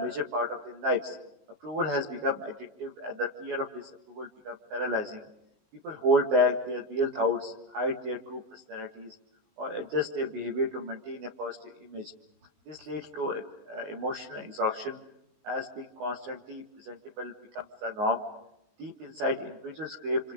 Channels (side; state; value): left; late; 19 ms